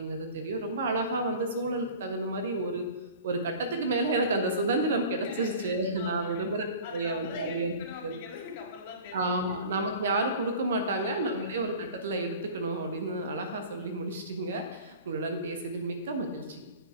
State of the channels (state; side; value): inverted; both; correlation -0.41